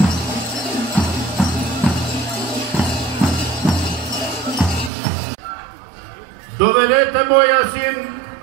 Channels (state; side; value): drops out; left; at 4.9 s